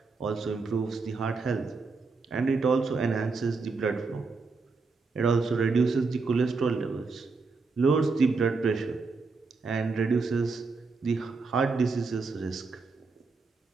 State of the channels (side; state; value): left; quieter; 4.2 dB